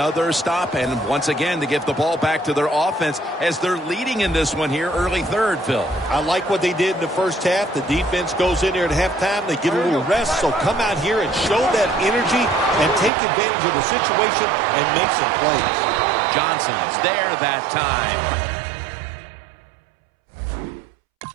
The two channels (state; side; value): drops out; left; at 13.1 s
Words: stop and once again to get the ball back to their offense as they're leading in this one here early third, Phil. I like what they did in the first half. The defense goes in there at halftime. They get a little rest, so come out here and show that energy and take advantage of the situation and make some plays. Johnson's there that time.